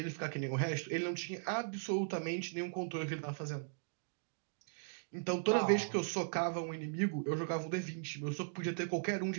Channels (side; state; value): left; silent; digital silence